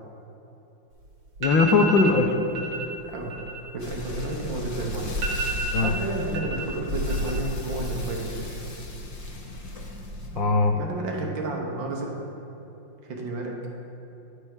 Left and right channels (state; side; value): late; left; 5.7 ms